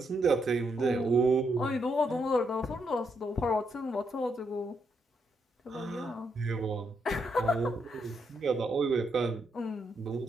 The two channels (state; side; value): normal; both; correlation 0.78